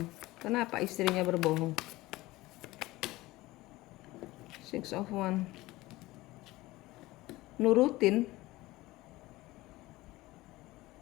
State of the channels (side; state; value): right; quieter; 19.0 dB